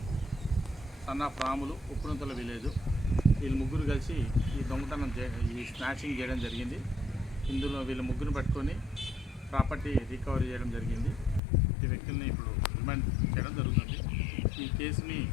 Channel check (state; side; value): drops out; right; at 11.4 s